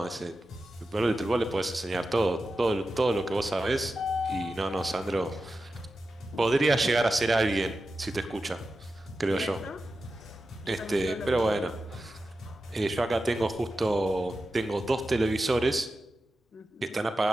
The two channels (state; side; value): normal; both; correlation 0.92